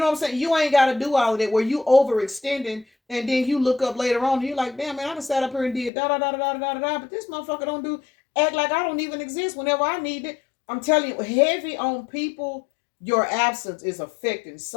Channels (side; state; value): right; drops out; at 5.9 s